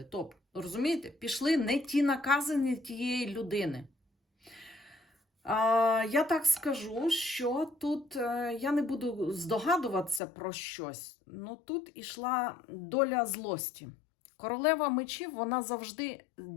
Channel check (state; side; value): drops out; right; at 10.2 s